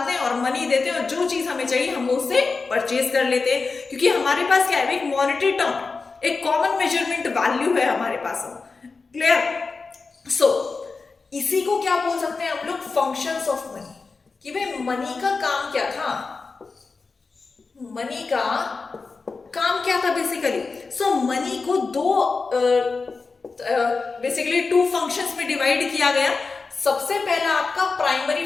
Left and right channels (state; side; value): quieter; right; 4.3 dB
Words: हैं और मनी देते हैं और जो चीज हमें चाहिए हम उससे परचेज कर लेते हैं, क्योंकि हमारे पास क्या है, एक मॉनेटरी टर्म, एक कॉमन मेजरमेंट वैल्यू है हमारे पास। क्लियर? सो इसी को क्या बोल सकते हैं हम लोग, फंक्शंस ऑफ मनी, कि भाई मनी का काम क्या था, मनी का काम क्या था बेसिकली। सो मनी को दो बेसिकली टू फंक्शंस में डिवाइड किया गया। सबसे पहला आपका